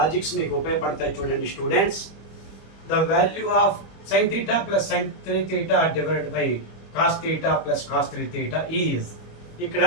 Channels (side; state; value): right; late; 25 ms